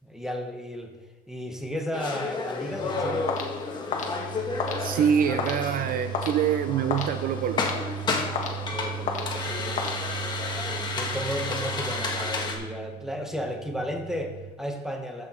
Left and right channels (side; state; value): both; normal; correlation 0.38